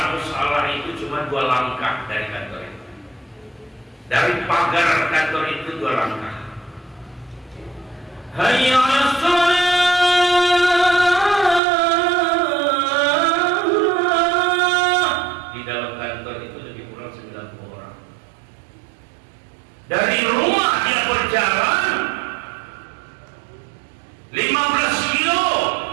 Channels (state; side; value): drops out; left; at 11.6 s